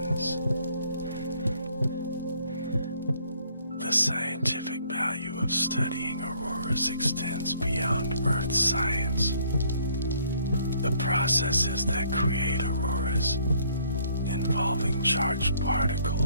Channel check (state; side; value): inverted; both; correlation -0.63